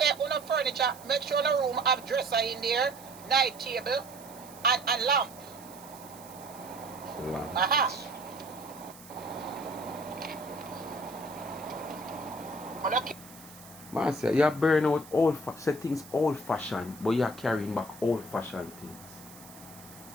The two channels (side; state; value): right; noise; hiss, 19 dB below the sound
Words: on the furniture, make sure the room have dresser in there, night table, and lamp. Aha. Man say you burn out say things old fashioned, but you're carrying back old fashioned things.